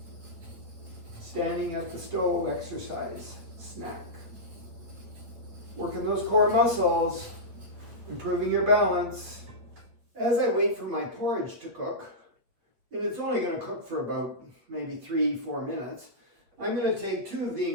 Standing at the stove exercise, snack. Working those core muscles, improving your balance. As I wait for my porridge to cook, and it's only going to cook for about maybe 3-4 minutes, I'm going to take 2 of the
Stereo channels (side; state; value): left; late; 8.5 ms